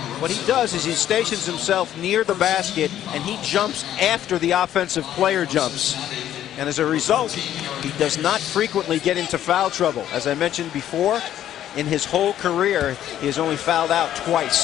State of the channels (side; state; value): right; quieter; 11.5 dB